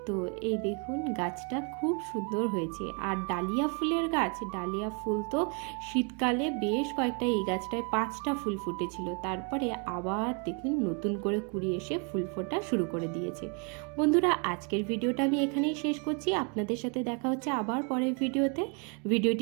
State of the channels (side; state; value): left; quieter; 36.4 dB